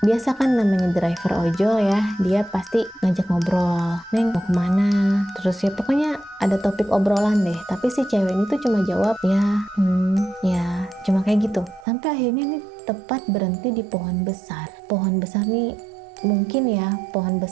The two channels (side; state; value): left; drops out; at 11.9 s